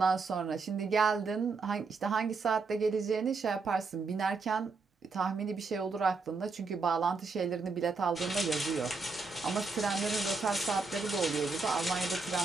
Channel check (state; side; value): quieter; left; 4.2 dB